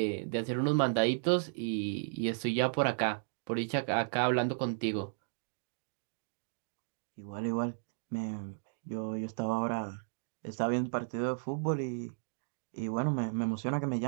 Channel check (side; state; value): left; silent; digital silence